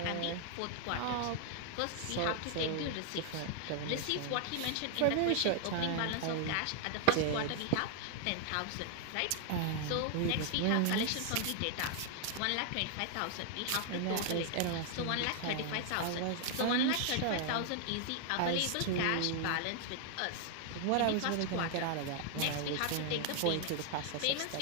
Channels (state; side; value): different; both; correlation 0.00